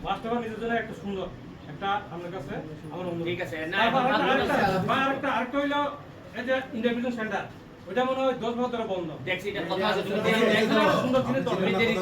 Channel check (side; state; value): both; identical; correlation 1.00